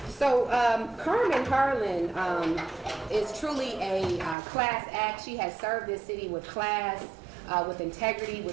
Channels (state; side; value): drops out; left; at 4.4 s